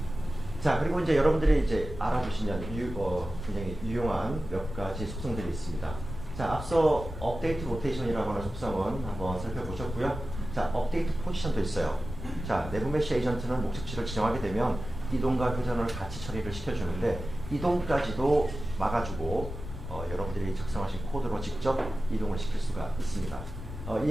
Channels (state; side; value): noise; left; rumble, 9 dB below the sound